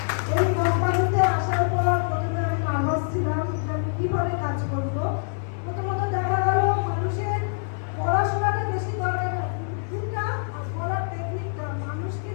এই কোম্পানিতে আসার পর প্রথমে আমি নার্ভাস ছিলাম যে আমি কীভাবে কাজ করবো। প্রথমত দেখা গেল মানুষের পড়াশোনাটা বেশি দরকার, বুদ্ধিটা আর বলার টেকনিকটা মানুষকে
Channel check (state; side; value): silent; right; 62 dB below the other